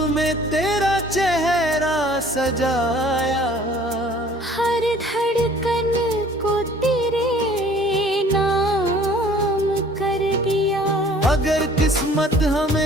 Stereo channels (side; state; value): both; normal; correlation 0.52